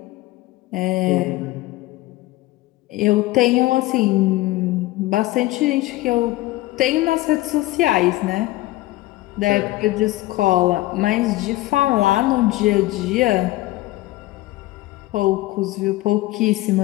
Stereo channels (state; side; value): quieter; right; 18.0 dB